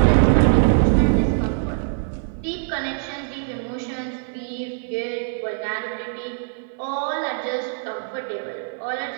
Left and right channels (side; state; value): left; silent; 56 dB below the other